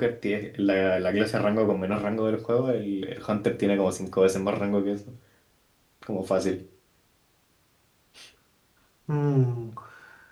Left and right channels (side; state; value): both; identical; correlation 1.00